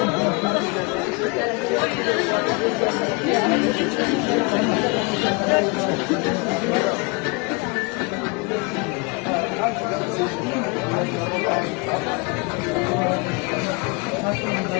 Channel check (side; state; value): right; quieter; 29.6 dB